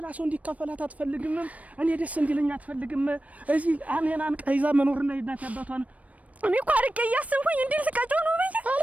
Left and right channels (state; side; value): late; left; 0.068 ms